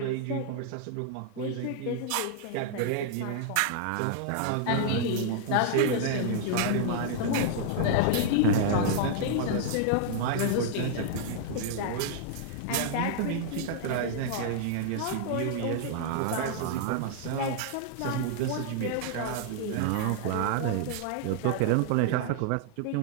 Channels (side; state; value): both; different; correlation -0.01